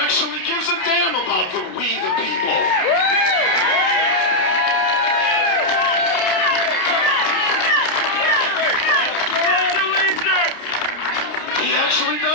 gives a damn about the we the people. He actually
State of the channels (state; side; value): late; right; 29 ms